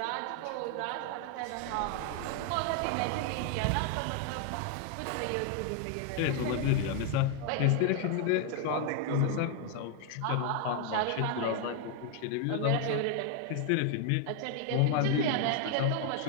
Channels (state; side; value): different; both; correlation 0.00